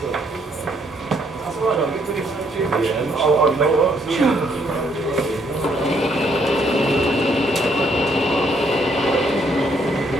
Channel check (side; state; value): both; normal; correlation 0.70